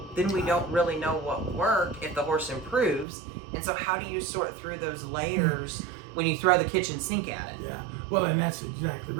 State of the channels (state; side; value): drops out; left; at 3.1 s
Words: then we don't really know what will work if the horse improves. And so how do you sort through those layers when you throw the kitchen sink at it? Yeah, well, and that's exactly